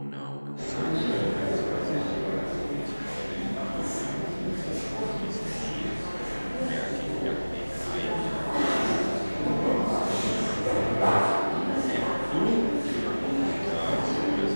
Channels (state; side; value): inverted; both; correlation -1.00